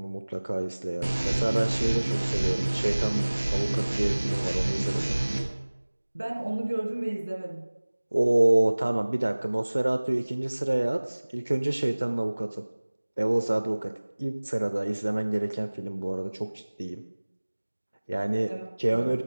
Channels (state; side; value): inverted; both; correlation -1.00